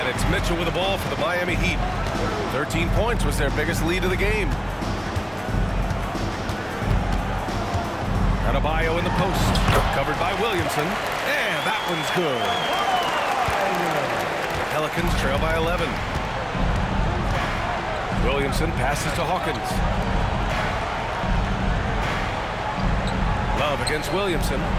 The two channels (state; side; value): identical; both; correlation 1.00